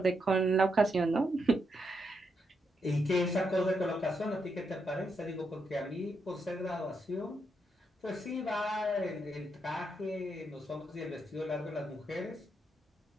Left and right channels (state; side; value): normal; both; correlation 0.81